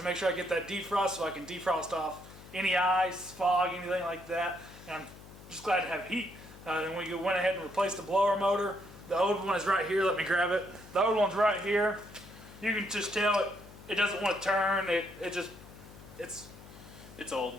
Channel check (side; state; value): left; noise; hum, 18 dB below the sound